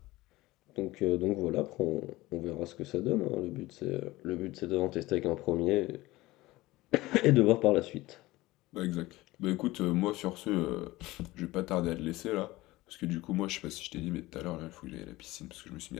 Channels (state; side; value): quieter; right; 19.0 dB